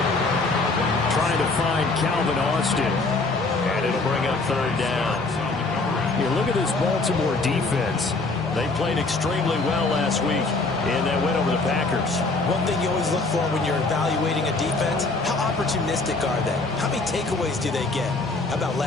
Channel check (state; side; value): quieter; right; 3.5 dB